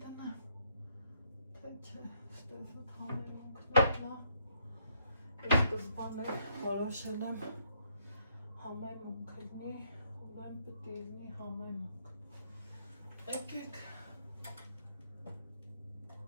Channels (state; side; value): inverted; both; correlation -0.72